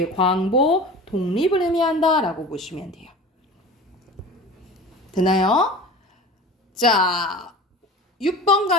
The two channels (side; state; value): both; normal; correlation 0.36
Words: 광복, 독립을 의미한다 라고 보시면 돼요. 되나요? 자, 6번